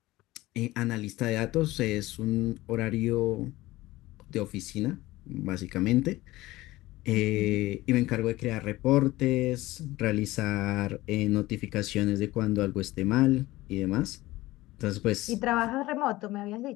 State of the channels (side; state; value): right; quieter; 18.2 dB